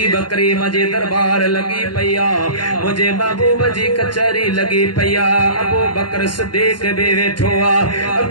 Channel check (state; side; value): late; right; 0.71 ms